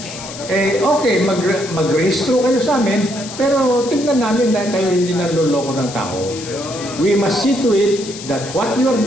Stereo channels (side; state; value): left; noise; hiss, 12 dB below the sound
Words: okay, mag-rehistro kayo sa amin, pero tignan namin dahil kayo hindi nanloloko ng tao. We must see to it that what you are